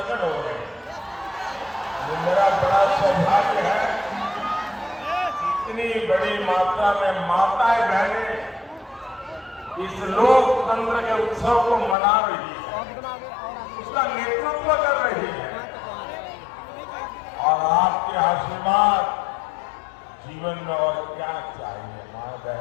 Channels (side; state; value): right; drops out; at 12.0 s